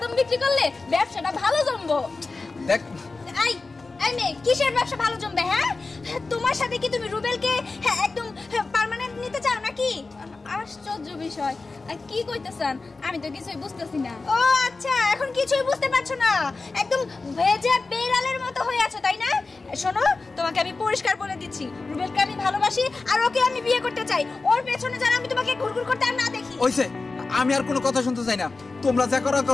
বিক্রি করলে ব্যবসাটা ভালো জমবো। দেখ এই এই মেয়ে, কিসের ব্যবসা ভালো জমবে? হ্যাঁ, তোমার সাথে কি তুমি রুবেলকে একদম পার্মানেন্ট নিতে চাও নাকি? আশ্চর্য বিষয়, কি কইতেছেন? আমি তো কিছুই বুঝতেছি না। ও আচ্ছা, এখন কিছুই বুঝতে পারছো না? একদম ভেজা বেড়ালের মতো হয়ে আছো, তাই না? শোনো, তোমাকে আমি পরিষ্কার বলে দিচ্ছি, রুবেলকে আমি ভালোবাসি আর ওকে আমি বিয়ে করতে চাই। ওর পেছনে যেন আমি তোমাকে ঘুরঘুর করতে আর না দেখি। ওইসে, আমি আর কোনো কথা শুনতে চাই না। তোমরা যা করো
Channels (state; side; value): quieter; right; 3.8 dB